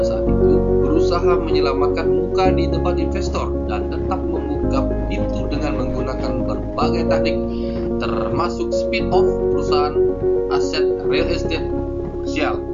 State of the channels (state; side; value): identical; both; correlation 1.00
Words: saat itu berusaha menyelamatkan muka di depan investor dan tetap membuka pintu dengan menggunakan berbagai taktik, termasuk spin-off perusahaan aset real estate komersial.